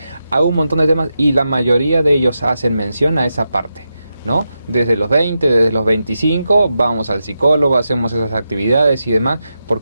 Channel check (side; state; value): both; inverted; correlation -0.87